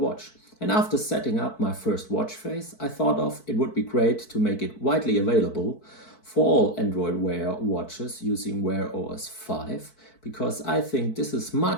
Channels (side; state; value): right; late; 4.6 ms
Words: And after setting up my first watch face, I thought of it would be great to make it widely available for all Android Wear watches using Wear OS 5, because I think this is